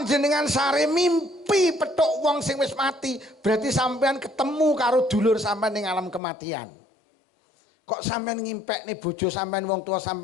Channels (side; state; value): right; drops out; at 6.2 s